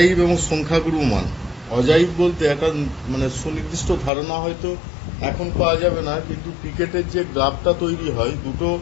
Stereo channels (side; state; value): right; drops out; at 4.1 s